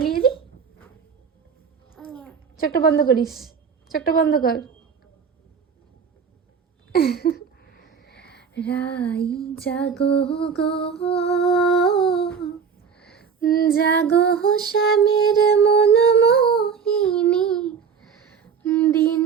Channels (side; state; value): left; quieter; 6.4 dB